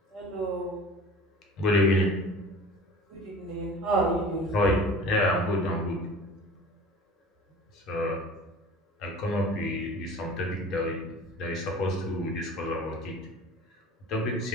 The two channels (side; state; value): both; normal; correlation 0.42